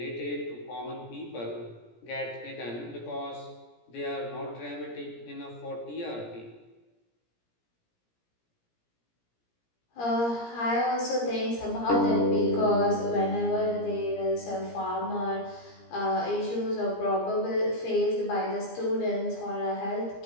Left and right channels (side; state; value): right; late; 17 ms